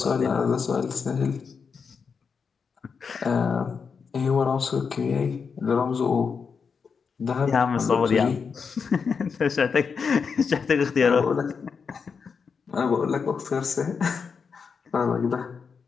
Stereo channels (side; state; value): right; quieter; 5.8 dB